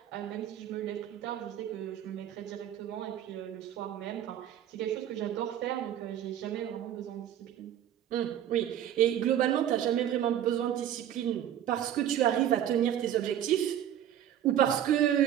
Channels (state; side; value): quieter; left; 10.8 dB